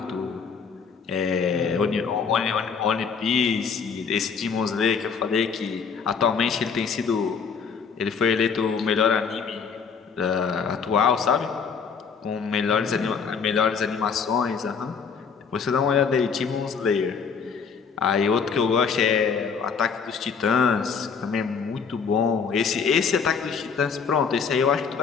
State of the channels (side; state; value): right; quieter; 6.0 dB